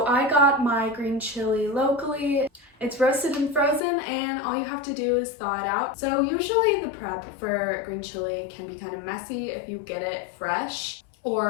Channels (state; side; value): drops out; right; at 3.8 s